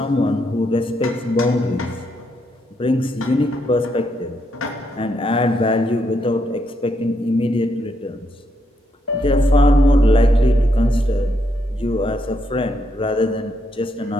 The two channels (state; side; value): normal; both; correlation 0.78